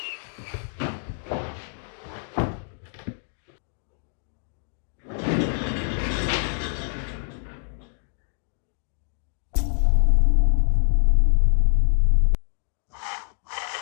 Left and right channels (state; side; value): silent; right; 62 dB below the other